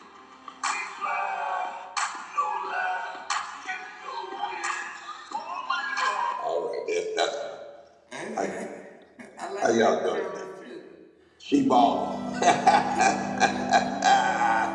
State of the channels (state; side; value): identical; both; correlation 1.00